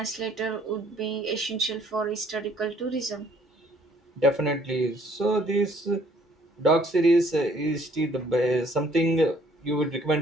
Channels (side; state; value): both; normal; correlation 0.61